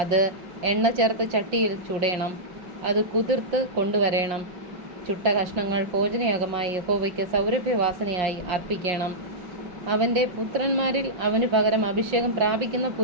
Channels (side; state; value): left; late; 5.6 ms